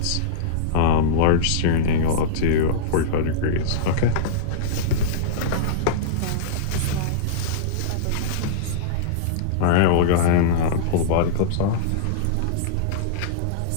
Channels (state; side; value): different; both; correlation -0.03